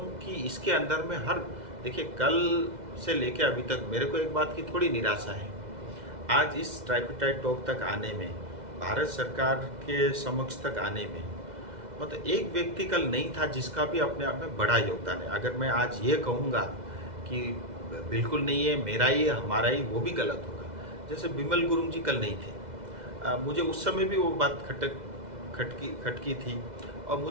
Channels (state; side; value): late; left; 2.0 ms